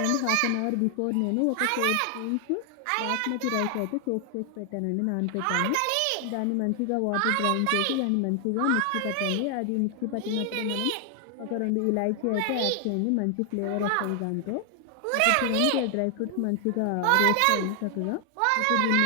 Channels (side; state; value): both; different; correlation 0.00